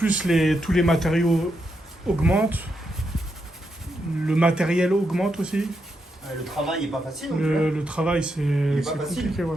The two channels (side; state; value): both; normal; correlation 0.82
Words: tous les matériaux augmentent. Le matériel augmente aussi. Le travail est pas facile. Donc, Le travail, c'est pas facile. compliqué,